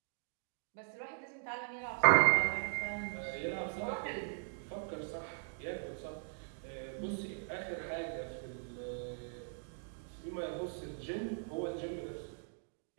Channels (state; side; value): silent; left; digital silence